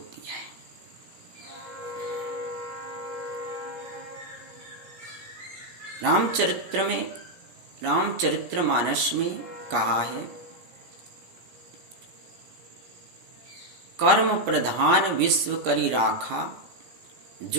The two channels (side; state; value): left; late; 17 ms